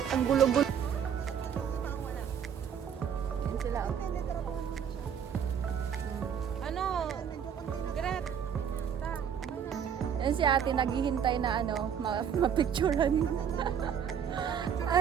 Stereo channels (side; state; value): left; quieter; 8.0 dB